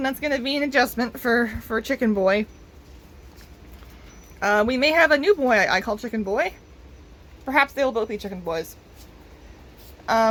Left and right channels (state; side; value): identical; both; correlation 1.00